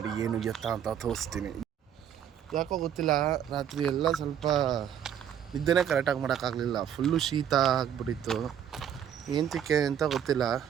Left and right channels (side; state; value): left; quieter; 9.2 dB